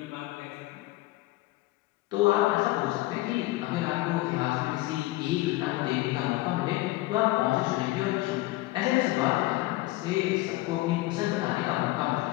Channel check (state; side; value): quieter; right; 18.9 dB